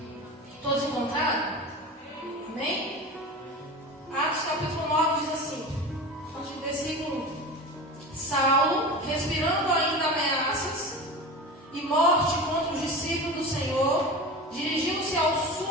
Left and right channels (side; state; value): both; normal; correlation 0.30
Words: Todos encontraram? Amém? Atos capítulo 9 diz assim, versículo 1. Saulo, respirando ainda ameaças e morte contra os discípulos do Senhor, dirigiu-se ao